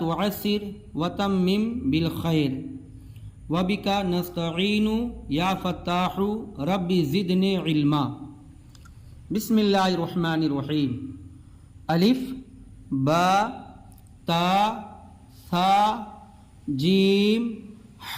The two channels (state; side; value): identical; both; correlation 1.00